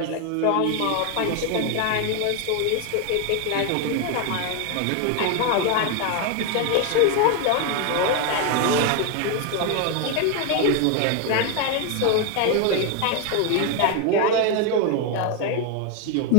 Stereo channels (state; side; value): different; both; correlation 0.01